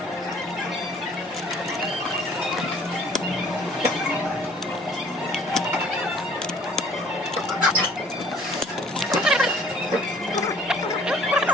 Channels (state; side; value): normal; both; correlation 0.56